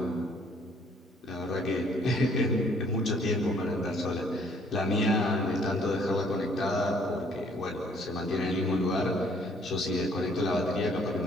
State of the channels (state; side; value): normal; both; correlation 0.62